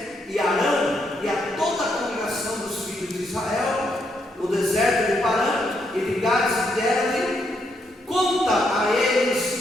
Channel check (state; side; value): normal; both; correlation 0.77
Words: e Arão e a toda a congregação dos filhos de Israel no deserto de Parã, e ligados deram-lhe conta a